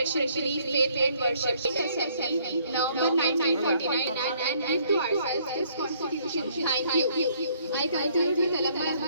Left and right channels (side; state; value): both; inverted; correlation -0.64